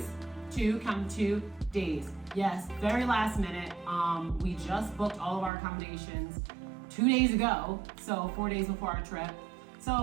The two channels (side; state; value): left; drops out; at 5.5 s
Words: Count 2 days. Yes, very last minute. We just booked all of our accommodations 2 days ago, so 4 days before our trip.